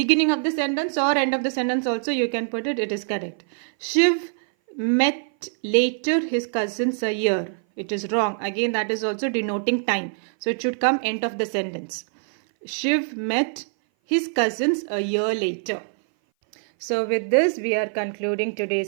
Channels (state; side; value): silent; left; 58 dB below the other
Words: of the sentence or end of the sentence also you can put it. It is correct. Shiv met later his cousins a year. It is wrong. Again, that is also denoting time. So it should come end of the sentence. Shiv met his cousins a year later. So with this, we are concluding